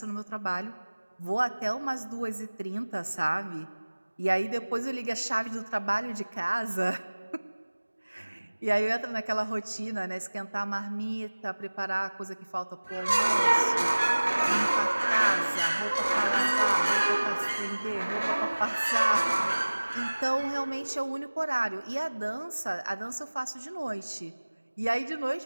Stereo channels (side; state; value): both; inverted; correlation -1.00